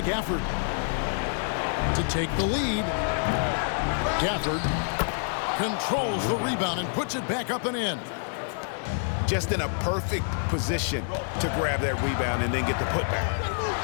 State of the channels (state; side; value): silent; right; digital silence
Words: Gafford to take the lead. Gafford controls the rebound and puts it back up and in. Just in a perfect position to grab that rebound and then get the putback.